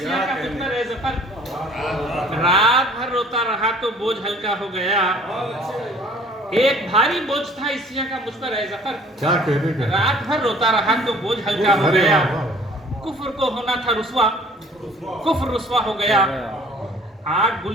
का मुझ पर ए ज़फ़र, रात भर रोता रहा तो बोझ हल्का हो गया। एक भारी बोझ था इसियां का मुझ पर ए ज़फ़र, क्या कहने, क्या रात भर रोता रहा तो बोझ हल्का हो अरे गया। वाह, वाह। कुफ्र को होना था रुस्वा, कुफ्र रुस्वा हो गया। आग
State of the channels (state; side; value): normal; both; correlation 0.53